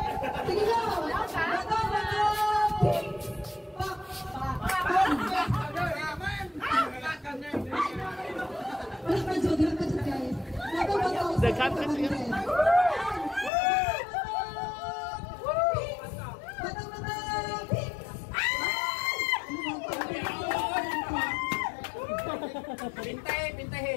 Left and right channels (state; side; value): drops out; right; at 13.5 s